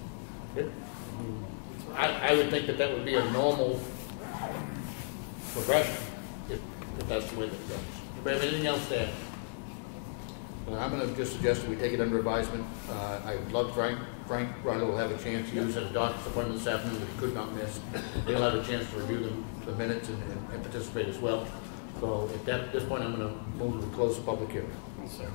I would think that would be a normal progression, if that's the way that it goes. Do you have anything else to add? Well, I'm going to just suggest that we take it under advisement. I would love Frank Ryder will have a chance to use at a doctor's appointment this afternoon that he could not miss. He'll have a chance to review the minutes and participate as well. So at this point, I'm going to move to close the public hearing.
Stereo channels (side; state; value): right; silent; digital silence